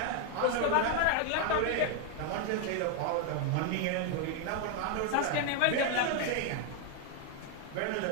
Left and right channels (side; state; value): both; different; correlation 0.00